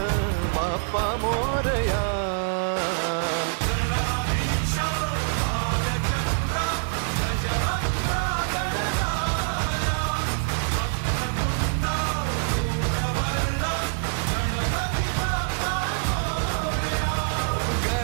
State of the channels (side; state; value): left; silent; digital silence